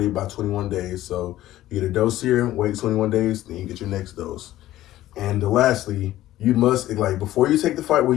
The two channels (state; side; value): quieter; right; 14.6 dB